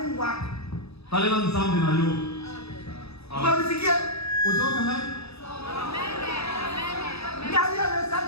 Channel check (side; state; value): right; late; 0.79 ms